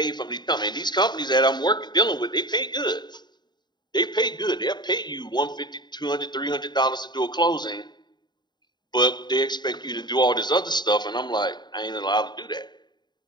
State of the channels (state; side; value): late; right; 0.21 ms